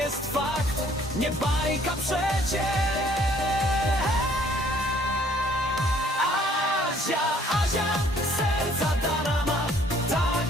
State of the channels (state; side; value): normal; both; correlation 0.60